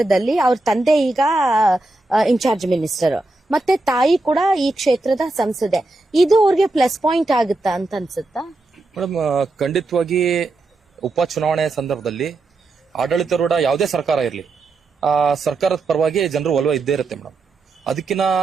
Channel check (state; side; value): quieter; left; 3.1 dB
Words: ಅವ್ರ ತಂದೆ ಈಗ ಇನ್ಚಾರ್ಜ್ ಮಿನಿಸ್ಟರ್, ಮತ್ತೆ ತಾಯಿ ಕೂಡ ಈ ಕ್ಷೇತ್ರದ ಸಂಸದೆ. ಇದು ಅವ್ರಿಗೆ ಪ್ಲಸ್ ಪಾಯಿಂಟ್ ಆಗುತ್ತಾ ಅಂತ ಅನ್ಸುತ್ತಾ ಮೇಡಮ್? ಖಂಡಿತವಾಗಿ ಉಪಚುನಾವಣೆ ಸಂದರ್ಭದಲ್ಲಿ ಆಡಳಿತಾರೂಢ ಯಾವುದೇ ಸರ್ಕಾರ ಇರಲಿ, ಆ ಸರ್ಕಾರದ ಪರವಾಗಿ ಜನರು ಒಲವು ಇದ್ದೇ ಇರುತ್ತೆ ಮೇಡಮ್. ಅದಕ್ಕಿಂತ